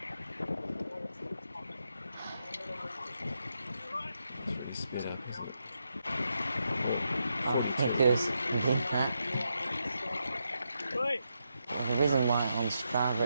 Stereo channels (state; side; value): inverted; both; correlation -0.84